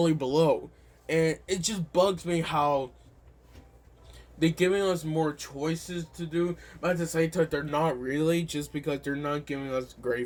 below. And it just bugs me how they're giving us more choices to do, but at the same time, they're not really, just because they're not giving us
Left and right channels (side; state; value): both; identical; correlation 1.00